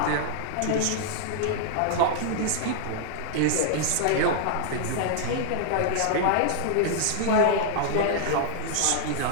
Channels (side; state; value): both; different; correlation -0.01